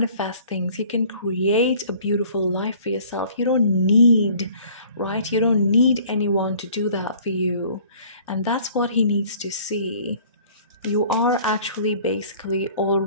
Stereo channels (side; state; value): both; inverted; correlation -0.53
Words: things, you can create a beautiful life for yourself. You don't need, right? You don't need anyone to do that for you. And that's what he needs to see. You are actually basically